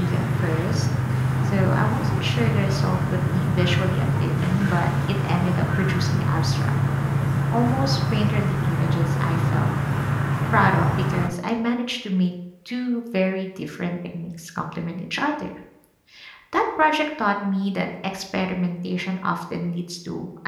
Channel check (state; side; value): identical; both; correlation 1.00